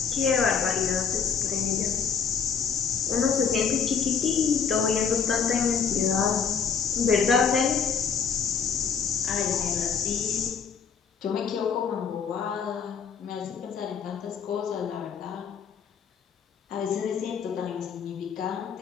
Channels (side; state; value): right; quieter; 6.4 dB